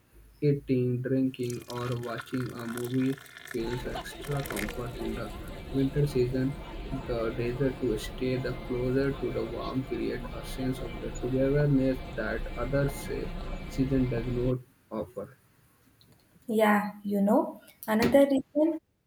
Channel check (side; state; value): both; identical; correlation 1.00